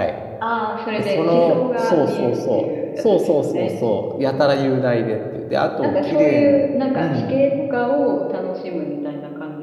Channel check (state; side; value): identical; both; correlation 1.00